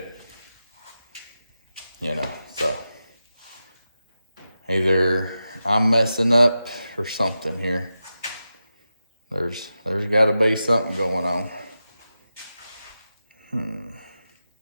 You know, so either I'm messing up or something here. There's got to be something going on.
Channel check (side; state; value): both; inverted; correlation -0.91